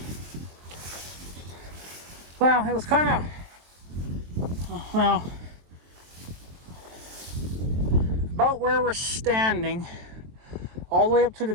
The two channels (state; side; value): late; left; 23 ms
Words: Well, it was kind of, about where we're standing, all the way up to the